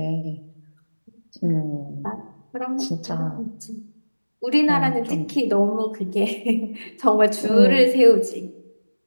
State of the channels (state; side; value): inverted; both; correlation -1.00